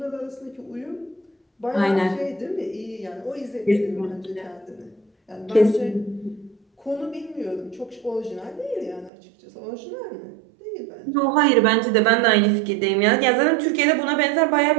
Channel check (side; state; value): left; drops out; at 9.1 s